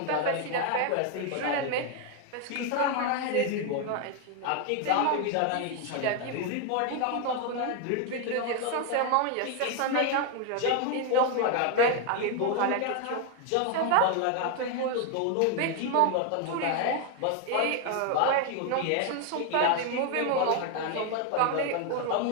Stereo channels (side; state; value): both; different; correlation 0.01